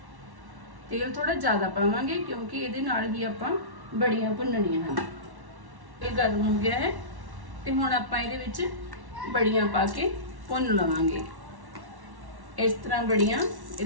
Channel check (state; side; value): late; left; 1.1 ms